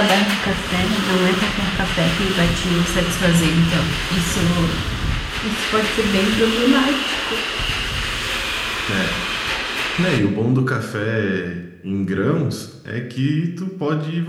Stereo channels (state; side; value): identical; both; correlation 1.00